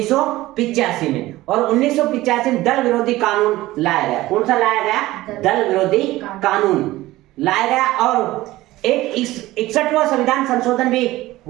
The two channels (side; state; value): left; quieter; 17.4 dB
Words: में। और 1985 में दल विरोधी कानून लाया गया। कौन सा लाया गया? दल विरोधी कानून लाया गया। और एक 61वां संविधान संशोधन भी